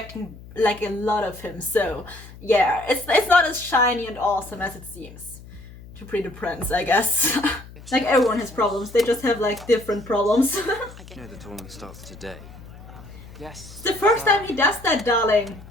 like a lot of him. So yeah, it's not as shiny and awesome as it seems to Pretty Prince, I guess. Like, everyone has problems. They just have like different problems. You know the tournament starts today. Yes. It's the first time he does that, darling.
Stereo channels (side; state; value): left; noise; hum, 18 dB below the sound